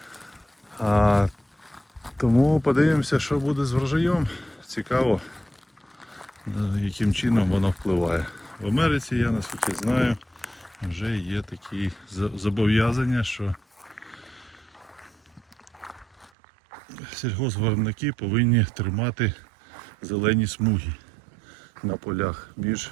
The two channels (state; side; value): drops out; left; at 16.3 s